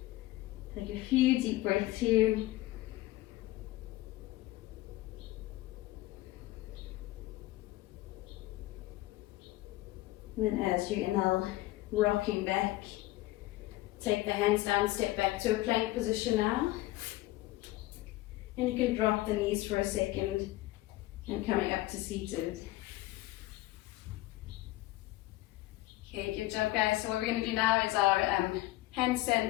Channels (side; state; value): right; quieter; 17.5 dB